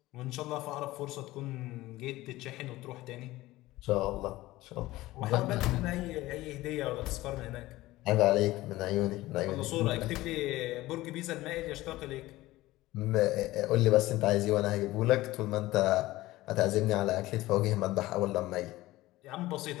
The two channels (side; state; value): right; quieter; 17.7 dB